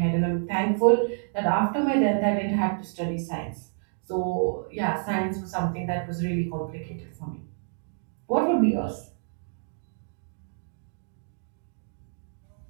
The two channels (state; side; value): silent; left; digital silence